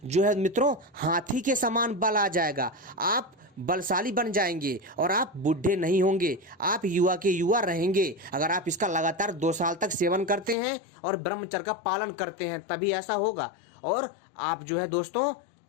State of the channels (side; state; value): right; drops out; at 10.6 s